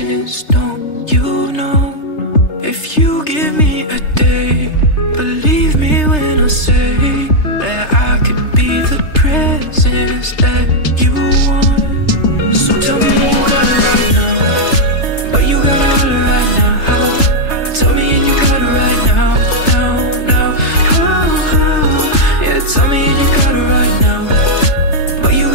don't you know? If you give me a day, believe me when I say that I could be the presence that you want. So tell me you got it right now, but you gotta holler right now. Tell me and you got it right now, now. Yeah, tell me and you got it right now, but you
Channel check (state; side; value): late; right; 3.3 ms